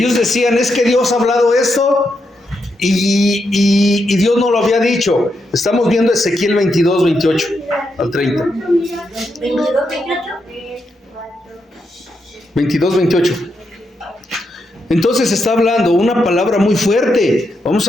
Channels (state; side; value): normal; both; correlation 0.83